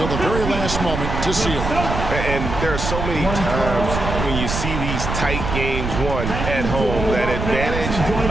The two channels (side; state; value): right; noise; rumble, 4 dB below the sound